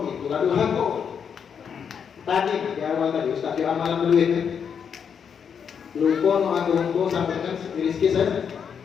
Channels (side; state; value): right; quieter; 7.2 dB